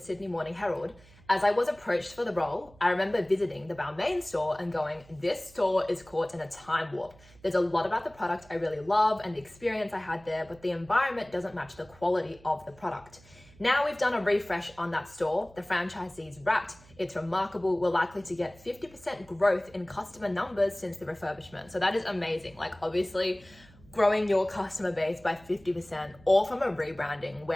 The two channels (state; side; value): noise; right; hum, 25 dB below the sound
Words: Morning Herald, "As I was approached for the role, I remember visiting the Balmain store and going, this store is caught in a time warp. There's a lot about the product I really love and the experience I had there, but the environment doesn't match the quality of the product. Now we've done a refresh on that store. The franchisee's wrapped. It's remarkable. We're likely to get 50% growth in customer numbers since the refurbishment." So that is amazing. Like obviously, growing your customer base by 50%, all from a rebranding,